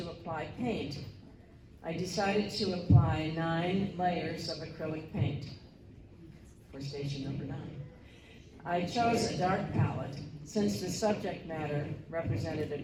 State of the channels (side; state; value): both; identical; correlation 1.00